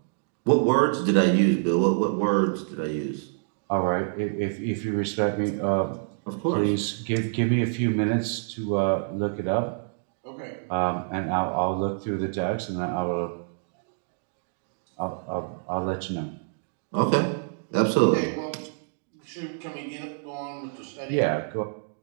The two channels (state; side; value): silent; left; digital silence